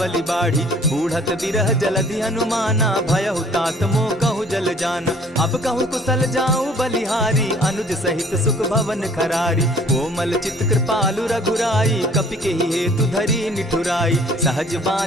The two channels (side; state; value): both; normal; correlation 0.55